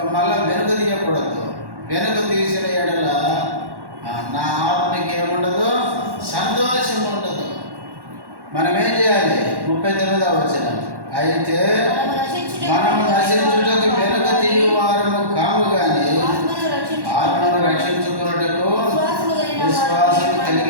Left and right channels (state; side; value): late; left; 1.1 ms